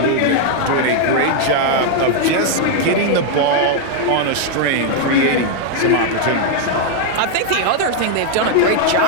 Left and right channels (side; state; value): both; different; correlation 0.00